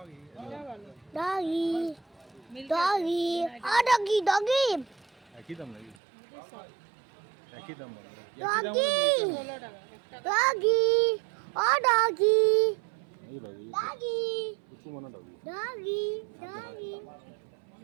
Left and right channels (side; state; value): left; drops out; at 6.0 s